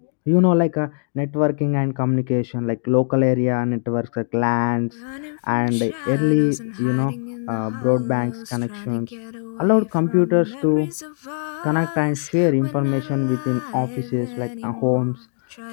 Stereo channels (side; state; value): right; silent; digital silence